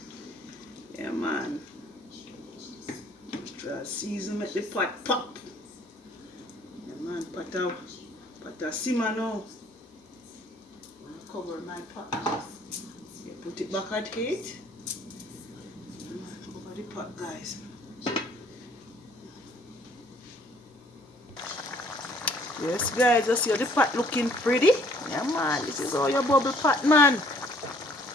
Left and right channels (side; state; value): both; normal; correlation 0.59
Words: Yeah, man. Natural season make the pot pop. Yeah, man. Pot a simmer now. Cover my pot. Yeah, put it back at heat. Yeah, man. Cover the pot, guys. Yes, guys, I see the pot looking pretty. Yeah, man, this is all your bubble pot, man.